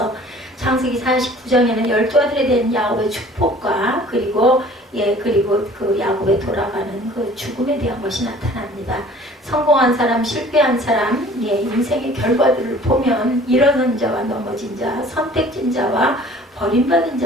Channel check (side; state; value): both; normal; correlation 0.50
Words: 창세기 49장에는 12아들에 대한 야곱의 축복과 그리고 그 야곱에 돌아가는 그 죽음에 대한 것이 나타납니다. 성공한 사람, 실패한 사람, 인생의 결과들을 보면 일어선 자와 넘어진 자, 선택진 자와 버림받은